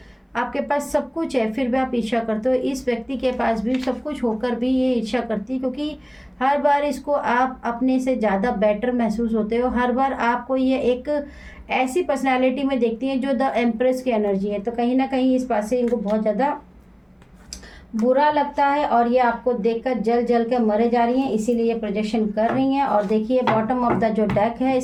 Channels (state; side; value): identical; both; correlation 1.00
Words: आपके पास सब कुछ है फिर भी आप ईर्ष्या करते हो। इस व्यक्ति के पास भी सब कुछ होकर भी ये ईर्ष्या करती है, क्योंकि हर बार इसको आप अपने से ज़्यादा बेटर महसूस होते हो। हर बार आपको ये एक ऐसी पर्सनालिटी में देखती हैं जो द एम्प्रेस की एनर्जी है, तो कहीं ना कहीं इस बात से इनको बहुत ज़्यादा बुरा लगता है, और ये आपको देखकर जल जल के मरे जा रही हैं, इसीलिए ये प्रोजेक्शन कर रही हैं। और देखिए, बॉटम ऑफ द जो डेक है